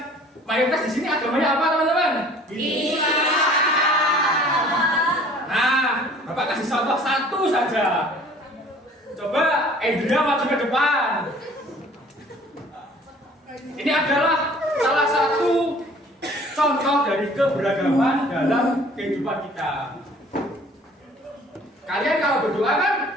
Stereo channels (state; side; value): normal; both; correlation 0.52